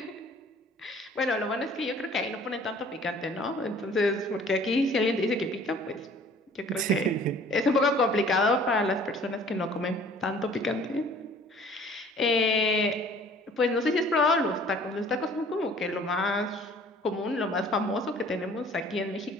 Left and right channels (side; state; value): both; normal; correlation 0.52